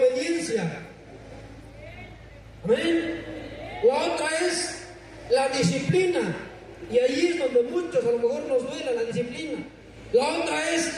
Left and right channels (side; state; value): both; identical; correlation 1.00